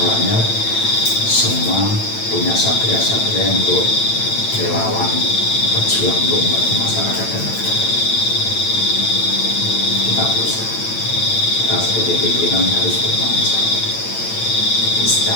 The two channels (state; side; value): late; right; 9.0 ms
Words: semua punya satria-satria untuk relawan berjuang untuk membantu masyarakat dan negara. Kita berusaha. Kita sebagai pimpinan harus bertanggung jawab.